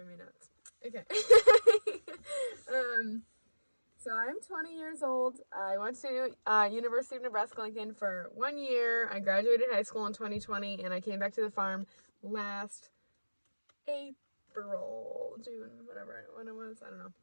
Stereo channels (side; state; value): both; inverted; correlation -1.00